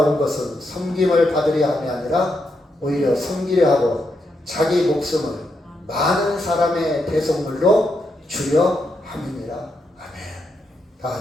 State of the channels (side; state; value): both; normal; correlation 0.82